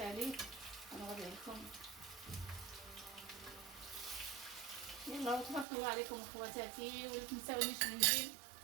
غنوريه لكم. يلا تبارك الله عليكم اخواتاتي، ولا تنساونيش من جيم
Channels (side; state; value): left; drops out; at 5.7 s